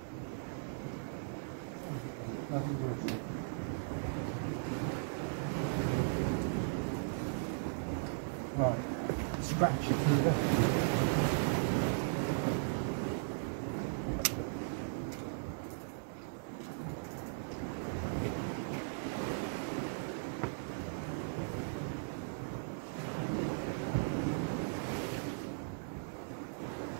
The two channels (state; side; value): silent; left; digital silence